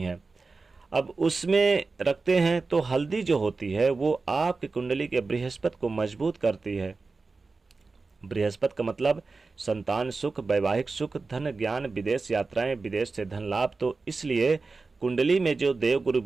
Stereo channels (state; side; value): quieter; left; 4.0 dB